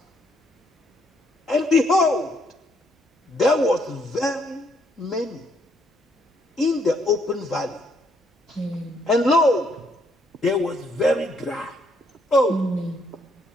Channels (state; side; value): normal; both; correlation 0.71